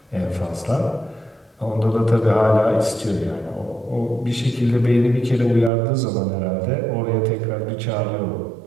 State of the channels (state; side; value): drops out; left; at 5.7 s